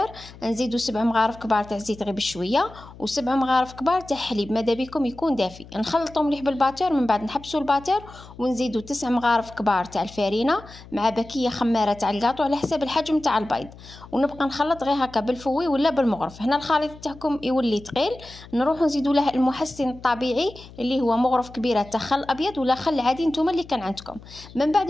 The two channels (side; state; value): left; noise; hum, 19 dB below the sound